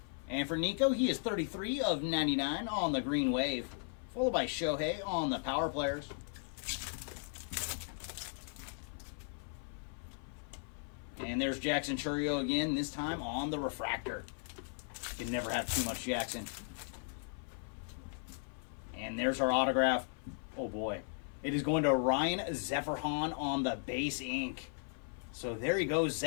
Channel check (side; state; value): right; silent; 53 dB below the other